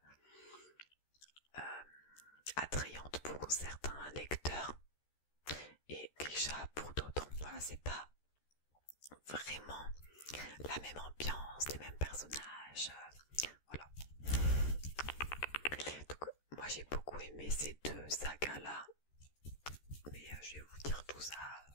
attrayante pour certains lecteurs et Grisha pour d'autres. Voilà, c'est pas vraiment la même ambiance, les mêmes personnages, voilà. Donc moi j'ai beaucoup aimé ces 2 sagas là, mais je vais vous dire tout ça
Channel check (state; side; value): late; right; 13 ms